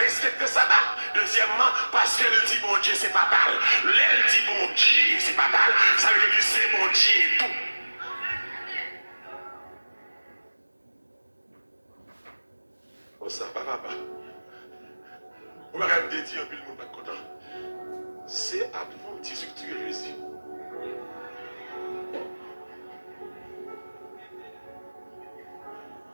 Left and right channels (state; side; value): inverted; both; correlation -1.00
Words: ça. Deuxièmement, parce qu'elle dit bon Dieu, c'est pas mal. Elle dit bon Dieu, c'est pas mal. Ça veut dire que c'est bon Dieu et tout. Oh, ça va, papa. On va quand même dire un peu le monde pas content. C'est adventiste que tu es Jésus.